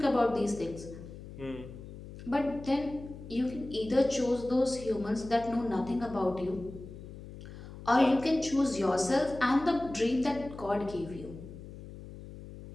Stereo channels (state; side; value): noise; left; hum, 14 dB below the sound